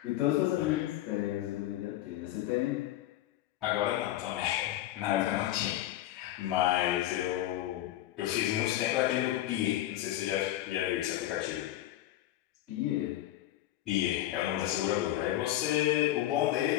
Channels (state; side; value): quieter; right; 14.2 dB